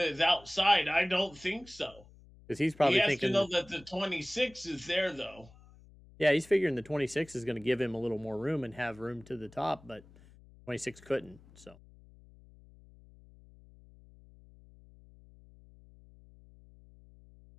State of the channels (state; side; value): noise; left; hum, 24 dB below the sound